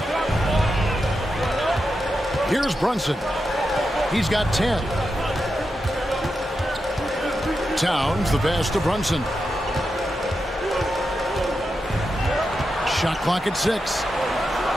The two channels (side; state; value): both; normal; correlation 0.88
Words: Here's Brunson. He's got 10. Towns, the pass to Brunson. Shot clock at 6.